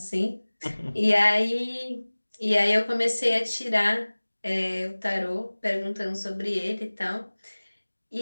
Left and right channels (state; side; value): inverted; both; correlation -1.00